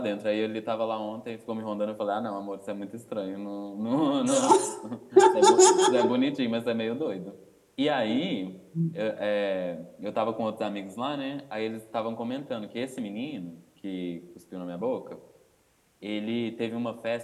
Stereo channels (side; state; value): both; identical; correlation 1.00